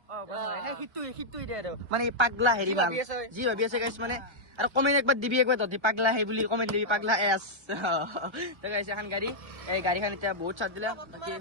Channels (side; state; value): left; late; 1.3 ms